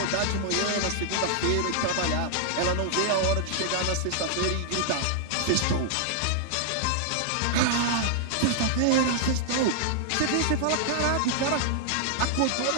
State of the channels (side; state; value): both; different; correlation -0.01